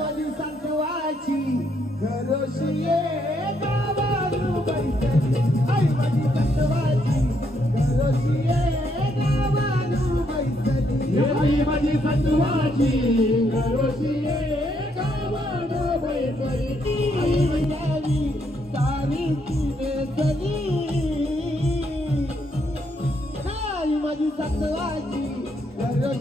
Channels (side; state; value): both; normal; correlation 0.74